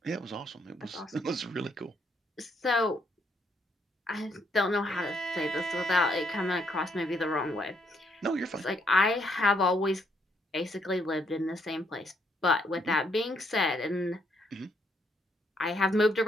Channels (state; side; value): normal; both; correlation 0.73